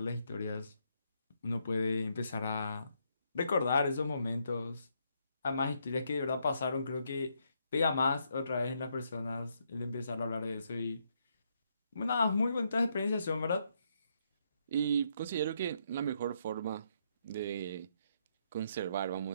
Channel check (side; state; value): both; inverted; correlation -0.75